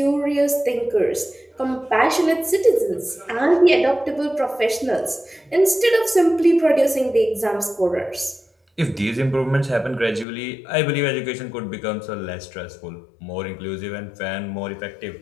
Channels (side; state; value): right; drops out; at 10.2 s